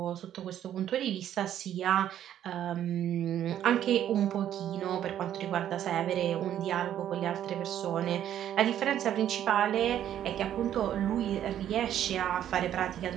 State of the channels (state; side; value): quieter; left; 10.9 dB